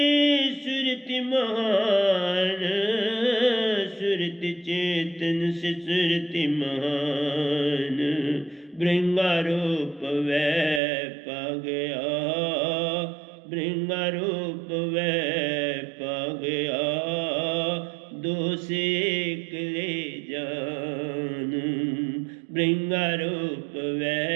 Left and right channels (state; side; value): drops out; left; at 10.8 s